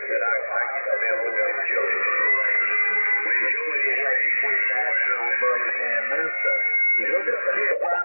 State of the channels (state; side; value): inverted; both; correlation -1.00